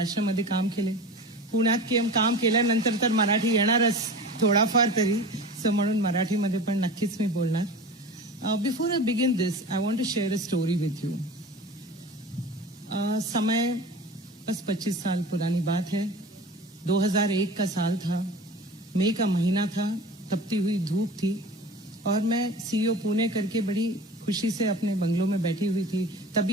काम केले. पुण्यात काम केल्यानंतर तर मराठी येणारच थोडाफार तरी, सो म्हणून मराठीमध्ये पण नक्कीच मी बोलणार. Before I begin this I want to share a story with you. समय बस 25 साल पुरानी बात है. 2001 का साल था, मई का महीना था, तपती हुई धूप थी और मैं सीईओ पुणे करके बड़ी खुशी से अपने बंगलों में बैठी हुई थी.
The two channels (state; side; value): normal; both; correlation 0.36